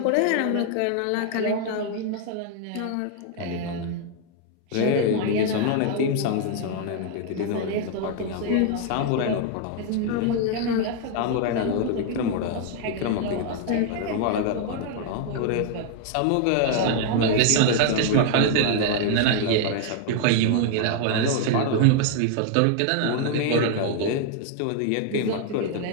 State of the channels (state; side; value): different; both; correlation 0.00